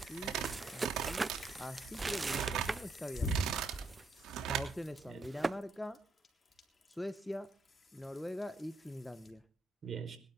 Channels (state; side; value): quieter; left; 3.1 dB